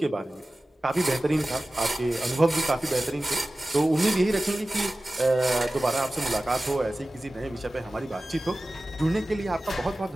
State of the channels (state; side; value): normal; both; correlation 0.97